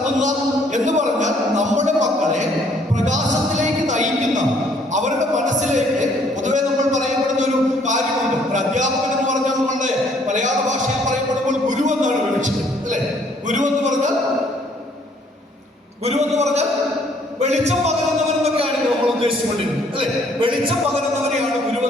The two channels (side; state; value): both; normal; correlation 0.63